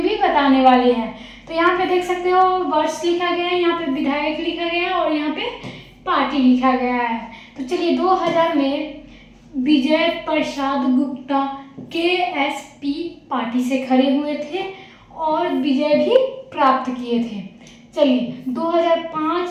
भी बताने वाले हैं। तो यहाँ पे देख सकते हो वर्ष लिखा गया है, यहाँ पे विधायक लिखा गया है और यहाँ पे पार्टी लिखा गया है। तो चलिए, 2000 में विजय प्रसाद गुप्ता केएसपी पार्टी से खड़े हुए थे और विजय भी प्राप्त किए थे। चलिए,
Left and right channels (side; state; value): both; identical; correlation 1.00